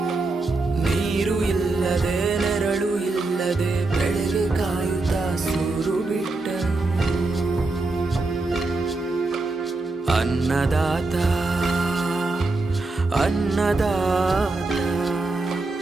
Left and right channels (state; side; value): quieter; left; 3.3 dB